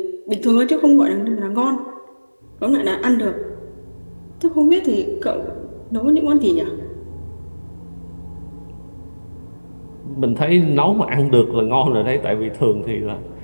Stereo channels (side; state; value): both; inverted; correlation -1.00